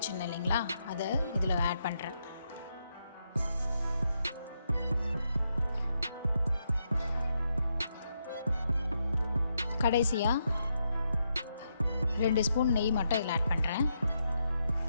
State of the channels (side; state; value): both; inverted; correlation -0.81